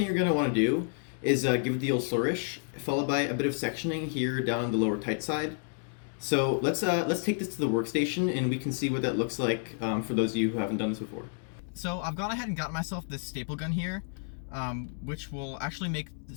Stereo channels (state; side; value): silent; right; 58 dB below the other